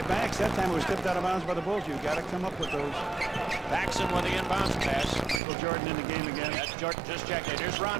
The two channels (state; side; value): drops out; left; at 5.4 s